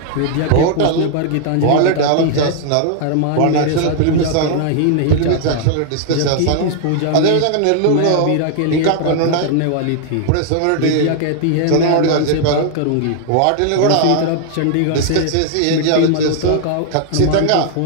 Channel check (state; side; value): different; both; correlation 0.00